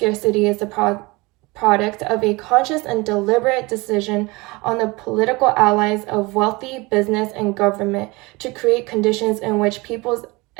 is the product of a conscious and deliberate decision on the political allies of wealthy business and government to create conditions in which people's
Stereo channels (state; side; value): quieter; left; 24.2 dB